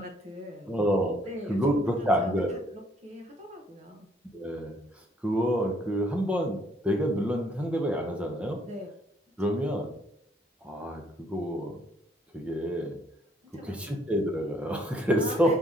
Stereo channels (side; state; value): both; normal; correlation 0.66